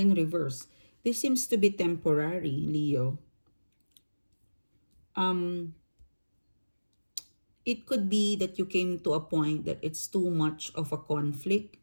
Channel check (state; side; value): inverted; both; correlation -1.00